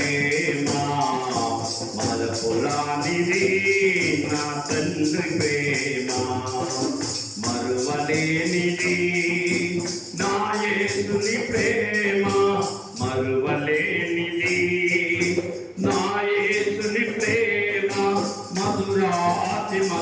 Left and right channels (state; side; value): identical; both; correlation 1.00